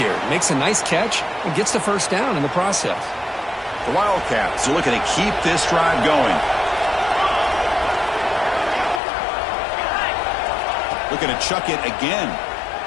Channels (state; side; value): drops out; right; at 9.0 s